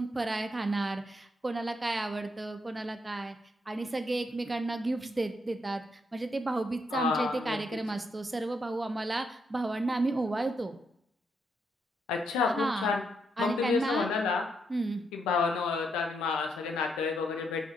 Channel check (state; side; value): normal; both; correlation 0.78